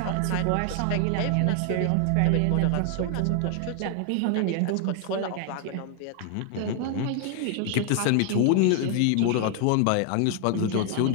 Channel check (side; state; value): both; different; correlation 0.00